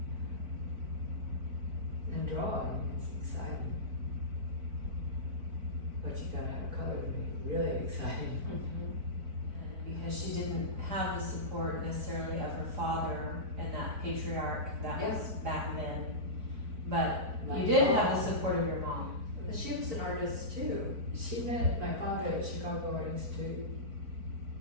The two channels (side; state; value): left; late; 4.5 ms